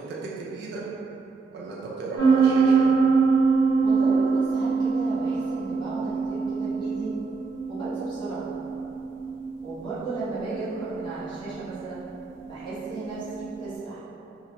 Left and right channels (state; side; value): quieter; left; 4.3 dB